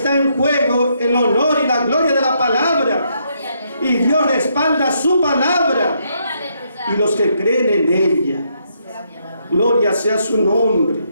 en juego el honor y la gloria de la palabra. Y Dios respalda su palabra y los que creen en ella. Gloria sea su nombre.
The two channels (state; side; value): inverted; both; correlation -0.75